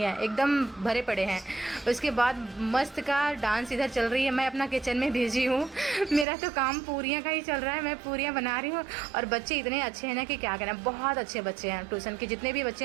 है, एकदम भरे पड़े हैं। उसके बाद मस्त का डांस इधर चल रही है। मैं अपना किचन में बिजी हूँ, मेरा तो काम पूरियाँ का ही चल रहा है, मैं पूरियाँ बना रही हूँ। और बच्चे इतने अच्छे हैं ना कि क्या कहना, बहुत अच्छे बच्चे हैं। ट्यूशन के जितने भी बच्चे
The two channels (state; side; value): drops out; left; at 6.2 s